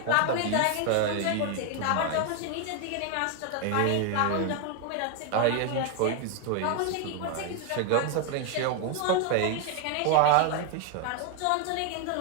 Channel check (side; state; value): both; different; correlation 0.00